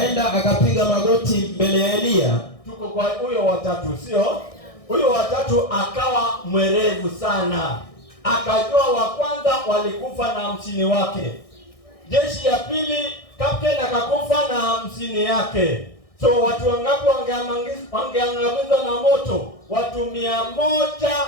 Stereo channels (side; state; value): right; late; 1.6 ms